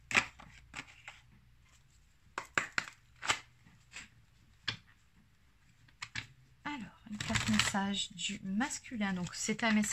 message du masculin. Donc, c'est un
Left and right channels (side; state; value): both; identical; correlation 1.00